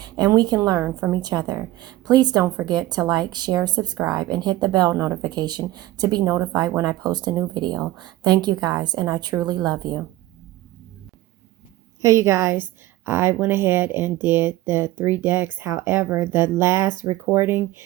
and we can learn from each other. Please don't forget to like, share, subscribe, and hit the bell notification to be notified when I post a new video. Thank you guys, and I truly love you. Hey, you guys, I went ahead and did the 3 decks. However, the last recording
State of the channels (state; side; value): quieter; left; 16.1 dB